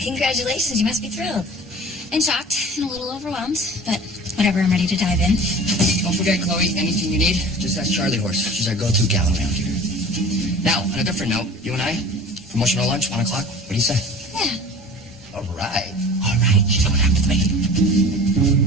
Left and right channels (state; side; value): normal; both; correlation 0.42